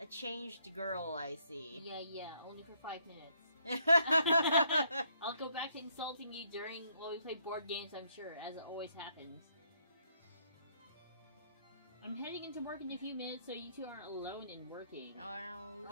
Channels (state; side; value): inverted; both; correlation -0.70